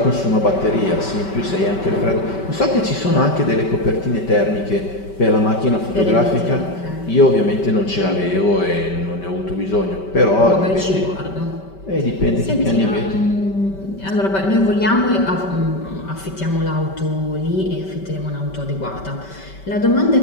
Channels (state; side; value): late; right; 5.2 ms